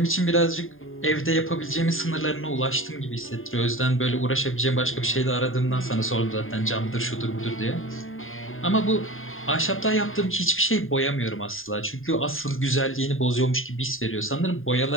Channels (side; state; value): right; late; 0.59 ms